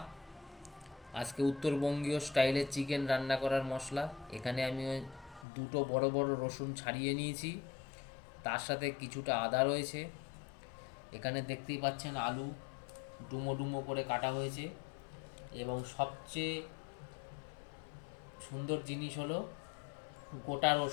আজকে উত্তরবঙ্গীয় স্টাইলে চিকেন রান্না করার মশলা। এখানে আমি দুটো বড় বড় রসুন ছাড়িয়ে নিয়েছি, তার সাথে কিছুটা আদা রয়েছে। এখানে দেখতেই পাচ্ছেন আলু ডুমো ডুমো করে কাটা হয়েছে, এবং সবচেয়ে সুন্দর জিনিস হলো গোটা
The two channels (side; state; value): right; drops out; at 5.5 s